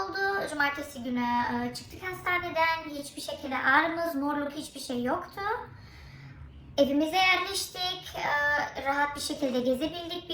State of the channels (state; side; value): identical; both; correlation 1.00